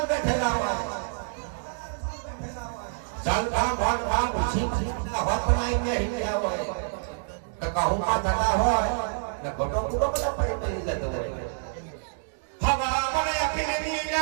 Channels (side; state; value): left; silent; digital silence